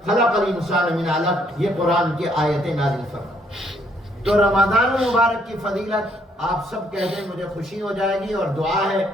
خلق الانسان من علق یہ قرآن کی آیتیں نازل فرمائیں۔ تو رمضان المبارک کی فضیلت آپ سب کہہ دیں، مجھے خوشی ہو جائے گی، اور دعا ہے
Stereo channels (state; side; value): normal; both; correlation 0.68